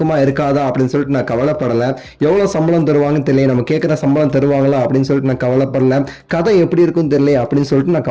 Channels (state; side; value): identical; both; correlation 1.00